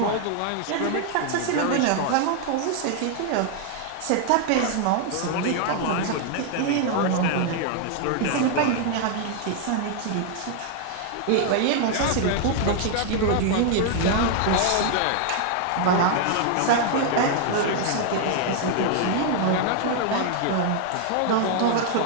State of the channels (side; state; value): both; different; correlation 0.00